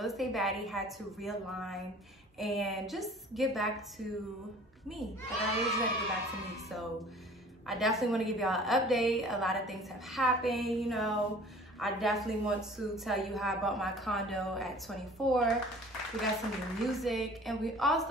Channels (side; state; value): both; normal; correlation 0.48